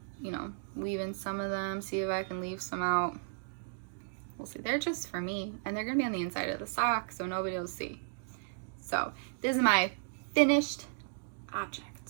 you know, leave in some of them, see if I can leave some out. We'll see. They're just for me, and they're gonna be on the inside of the sock, so nobody will see. So this is my finished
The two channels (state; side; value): silent; left; digital silence